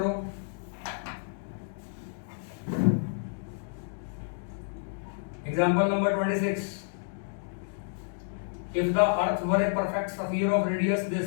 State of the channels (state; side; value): silent; right; digital silence